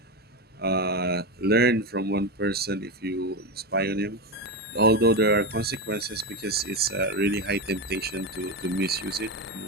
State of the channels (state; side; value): normal; both; correlation 0.15